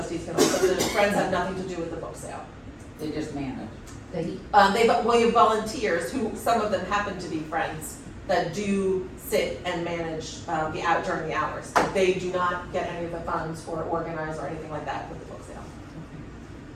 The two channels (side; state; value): both; identical; correlation 1.00